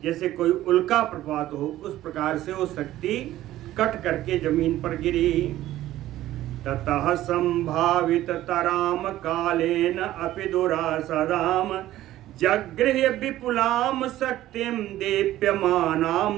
जैसे कोई उल्का प्रभात हो, उस प्रकार से वो शक्ति कट करके जमीन पर गिरी। ततः संभावित तराम कालेन अपि दुरासदाम जगृह्य विपुलाम शक्तिम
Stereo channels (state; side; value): quieter; left; 14.4 dB